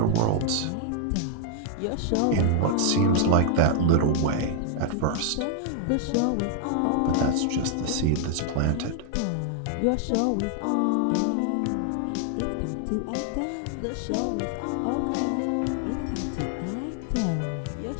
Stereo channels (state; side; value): different; both; correlation 0.00